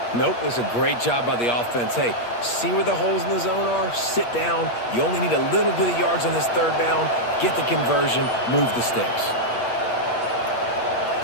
Nope, it was a great job by the offense. Hey, see where the holes in the zone are? Sit down. You only need a little bit of yards on this 3rd down. Get the conversion. Move the sticks.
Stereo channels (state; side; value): late; right; 8.4 ms